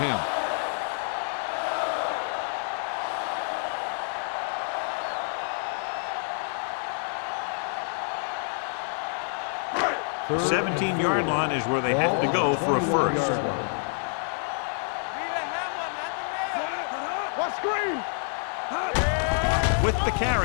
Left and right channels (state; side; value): silent; right; 60 dB below the other